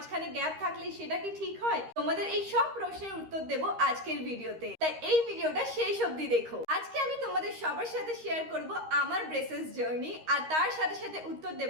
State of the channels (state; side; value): late; left; 13 ms